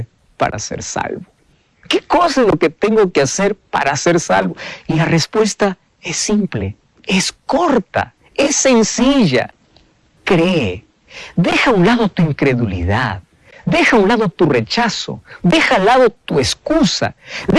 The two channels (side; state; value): both; identical; correlation 1.00